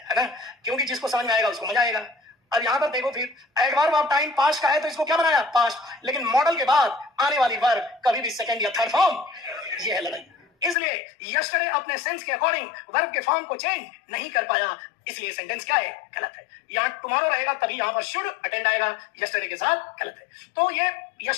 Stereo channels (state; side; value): drops out; right; at 10.8 s